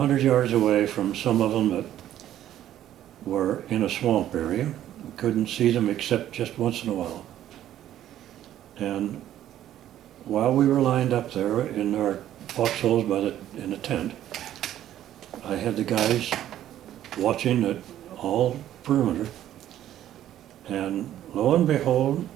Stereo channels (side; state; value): left; quieter; 12.0 dB